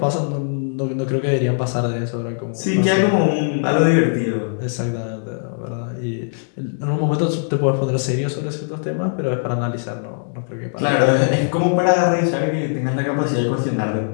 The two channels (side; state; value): right; silent; digital silence